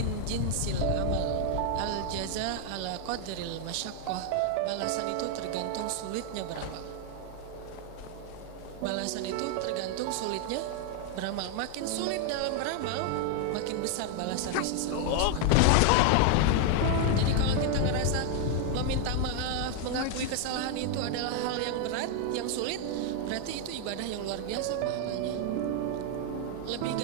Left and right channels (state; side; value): different; both; correlation 0.00